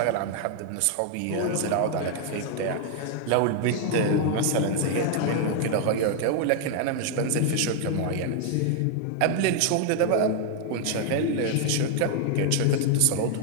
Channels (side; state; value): both; different; correlation 0.00